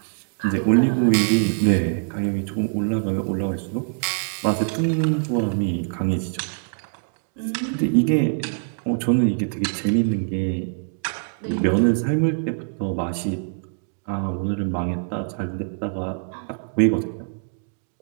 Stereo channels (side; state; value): left; silent; digital silence